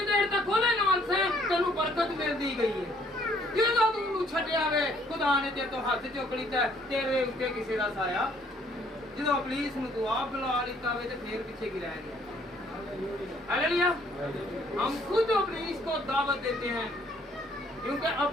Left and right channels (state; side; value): normal; both; correlation 0.64